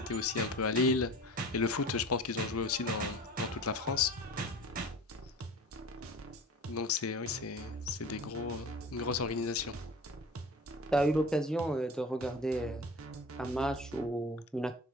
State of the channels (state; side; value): normal; both; correlation 0.38